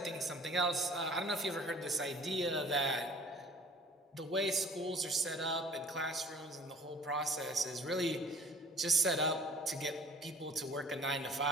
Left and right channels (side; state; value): both; normal; correlation 0.50